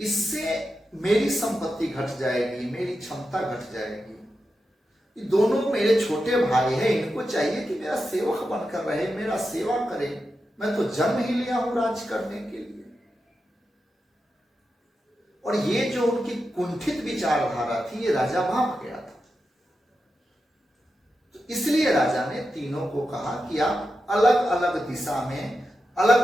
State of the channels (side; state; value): both; normal; correlation 0.89